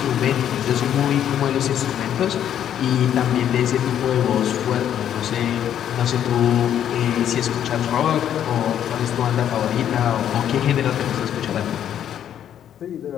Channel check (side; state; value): right; quieter; 10.0 dB